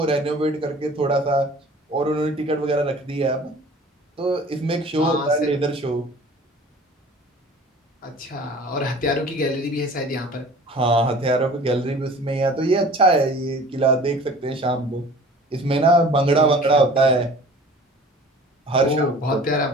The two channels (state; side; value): normal; both; correlation 0.45